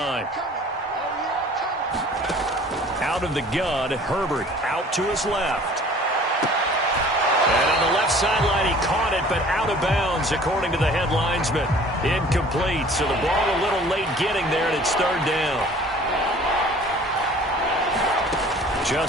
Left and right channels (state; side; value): normal; both; correlation 0.49